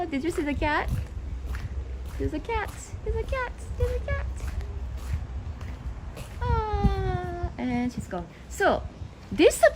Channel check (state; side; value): identical; both; correlation 1.00